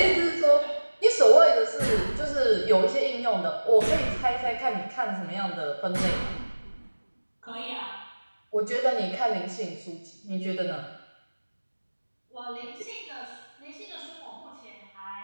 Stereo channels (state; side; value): inverted; both; correlation -1.00